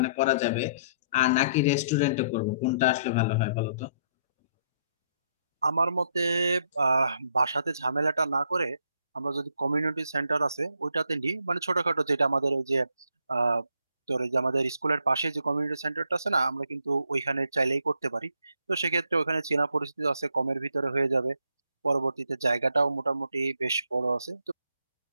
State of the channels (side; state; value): both; inverted; correlation -0.70